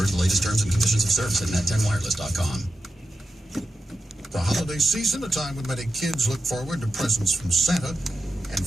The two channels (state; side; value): normal; both; correlation 0.89